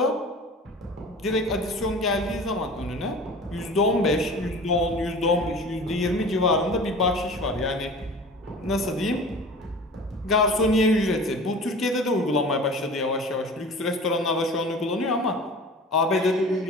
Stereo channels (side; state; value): both; normal; correlation 0.40